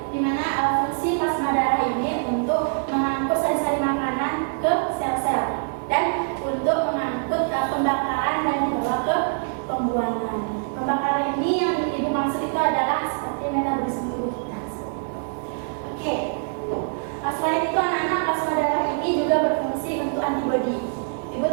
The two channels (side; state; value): left; silent; 62 dB below the other